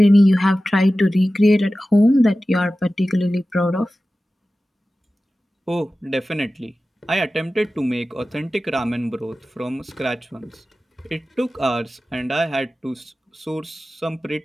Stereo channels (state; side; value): normal; both; correlation 0.95